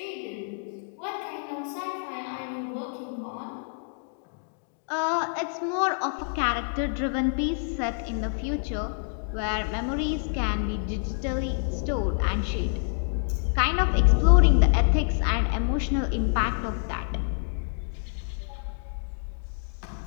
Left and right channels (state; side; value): silent; right; digital silence